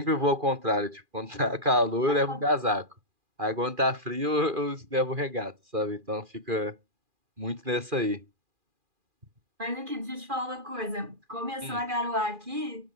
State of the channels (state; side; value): late; left; 2.4 ms